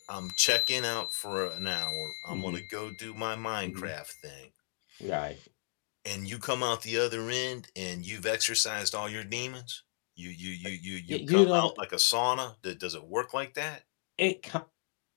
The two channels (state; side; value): silent; right; digital silence